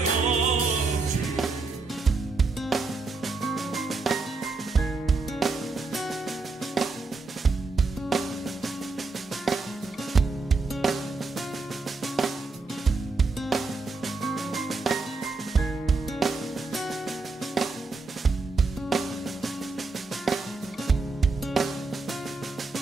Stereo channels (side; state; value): left; quieter; 3.8 dB